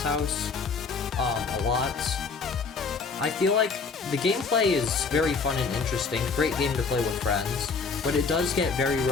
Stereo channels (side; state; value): right; quieter; 4.8 dB